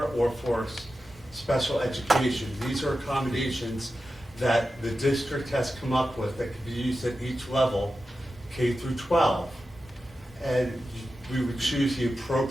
or for special education. These are accommodations that the district has come up with that can be used at each level, K through 12. And we would choose the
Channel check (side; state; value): both; normal; correlation 0.92